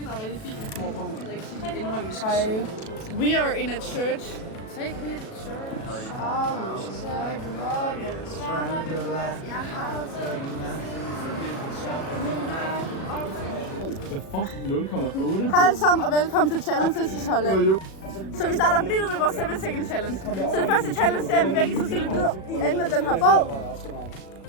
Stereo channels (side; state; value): right; late; 37 ms